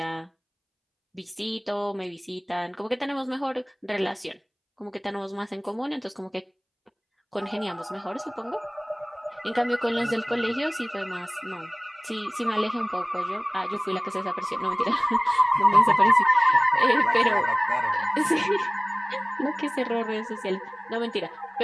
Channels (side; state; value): both; identical; correlation 1.00